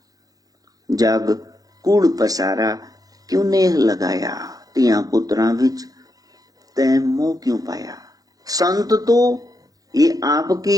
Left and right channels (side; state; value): left; late; 0.18 ms